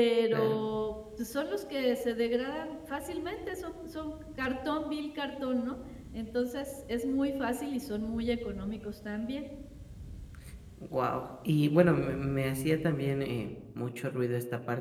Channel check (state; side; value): identical; both; correlation 1.00